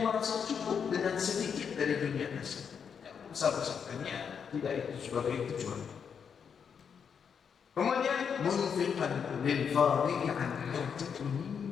merasa cukup dengan sedikit dari dunia tersebut. Besar-besarkannya tidak itu sebagai tujuan. Kemudian munfiqan lil fadhi'i an hajatihi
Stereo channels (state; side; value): quieter; right; 6.9 dB